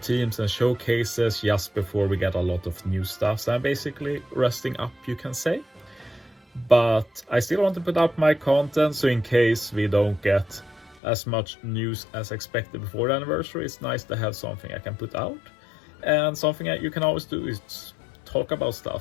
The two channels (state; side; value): drops out; right; at 11.0 s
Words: and showcases just before we get a lot of new stuff. So I'm basically resting up, you can say. But I still want to put up my content, so in case we don't get as much news as expected before the anniversary, it's nice to have something I can put out. And something that you can always do is talk about